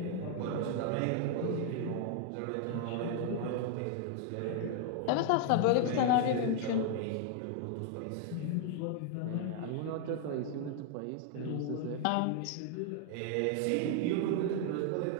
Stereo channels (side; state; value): both; different; correlation 0.00